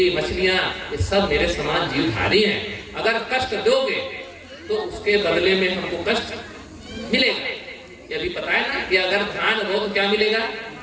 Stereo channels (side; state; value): both; identical; correlation 1.00